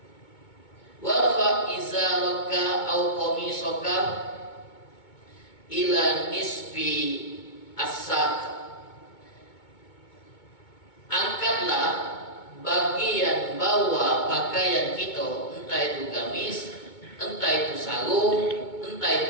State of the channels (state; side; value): late; right; 2.2 ms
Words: warfa izaraka au qamisaka ila nisfi as-saq. Angkatlah bagian bawah pakaian kita, entah itu gamis, entah itu sarung, entah